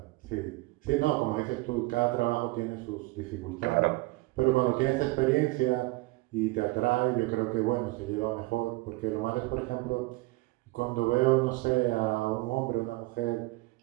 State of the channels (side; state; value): left; quieter; 21.7 dB